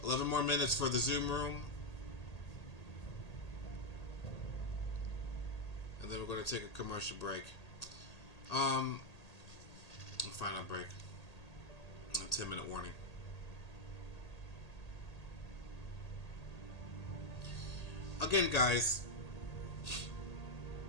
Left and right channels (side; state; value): right; late; 1.8 ms